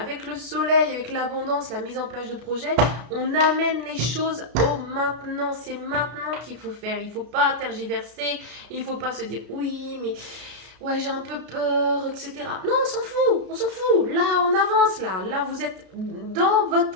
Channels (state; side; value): late; left; 33 ms